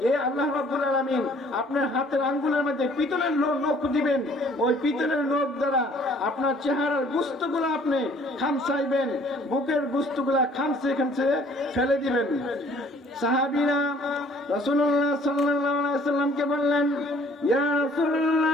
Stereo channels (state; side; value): normal; both; correlation 0.57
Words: এই আল্লাহ রাব্বুল আলামিন আপনার হাতের আঙ্গুলের মধ্যে পিতলের নখ দিবেন, ওই পিতলের নখ দ্বারা আপনার চেহারার গোস্তগুলো আপনি খামসাইবেন, বুকের গোস্তগুলা খামসে খামসে ফেলে দিবেন। সাহাবীরা রাসূলুল্লাহ সাল্লাল্লাহু আলাইহি ওয়াসাল্লামকে বললেন, ইয়া